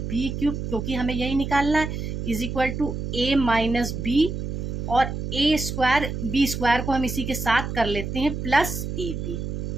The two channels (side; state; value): right; noise; hum, 4 dB below the sound